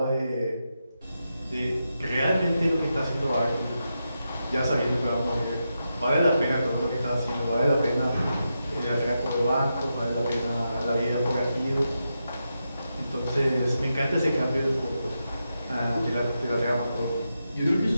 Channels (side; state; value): both; inverted; correlation -0.87